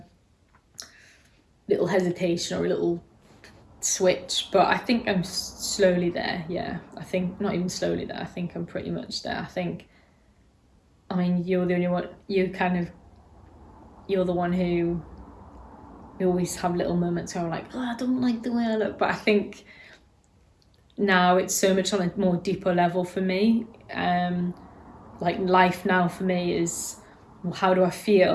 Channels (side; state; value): both; identical; correlation 1.00